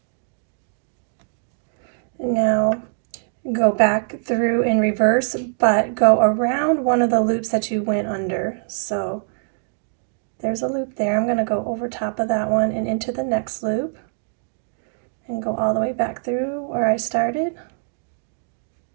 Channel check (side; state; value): left; silent; digital silence